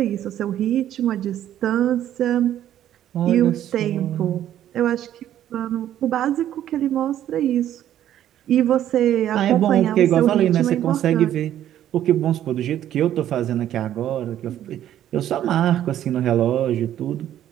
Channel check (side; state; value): left; quieter; 11.5 dB